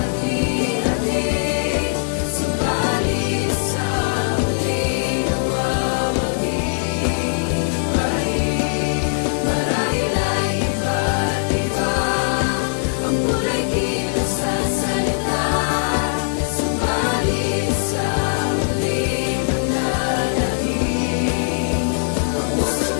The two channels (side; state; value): right; silent; digital silence